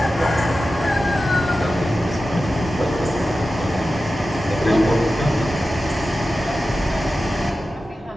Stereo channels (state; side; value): normal; both; correlation 0.93